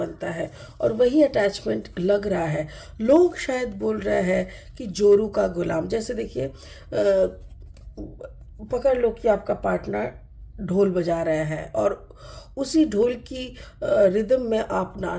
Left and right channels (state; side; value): identical; both; correlation 1.00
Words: है। और वही अटैचमेंट लग रहा है, लोग शायद बोल रहे हैं कि जोरू का गुलाम। जैसे देखिए पकड़ लो कि आपका पार्टनर ढोल बजा रहे हैं और उसी ढोल की रिदम में आप